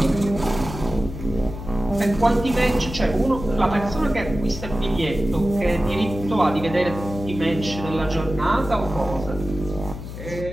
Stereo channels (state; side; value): noise; left; hum, 10 dB below the sound